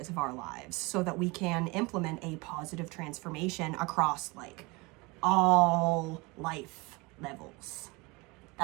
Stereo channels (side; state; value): left; quieter; 25.5 dB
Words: of our lives so that we can implement a positive transformation across like all life levels?